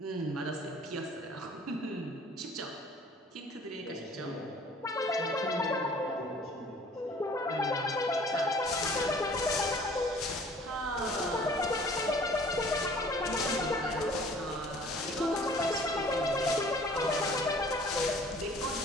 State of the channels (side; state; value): both; normal; correlation 0.52